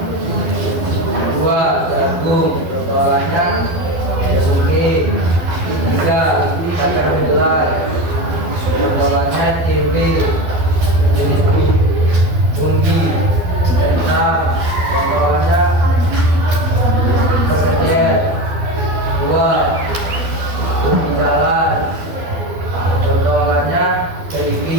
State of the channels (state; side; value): late; left; 12 ms